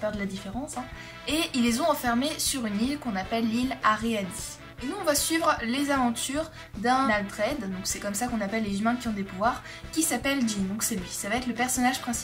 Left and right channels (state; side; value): identical; both; correlation 1.00